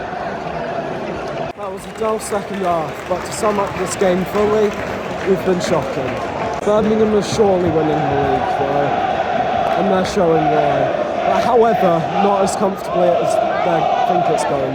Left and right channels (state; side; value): identical; both; correlation 1.00